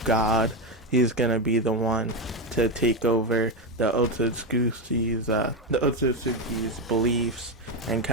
god. He's going to be the one to take over the Otsutsuki's beliefs and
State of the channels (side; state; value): both; normal; correlation 0.11